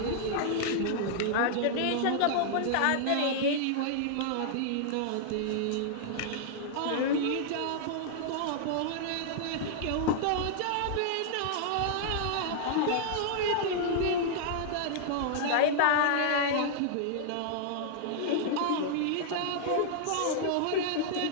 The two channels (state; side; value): different; both; correlation -0.01